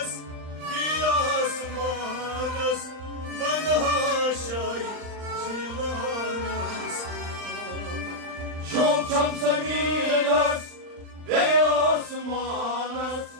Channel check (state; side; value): late; left; 39 ms